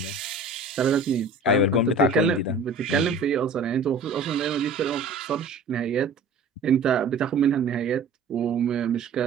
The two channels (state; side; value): quieter; left; 3.7 dB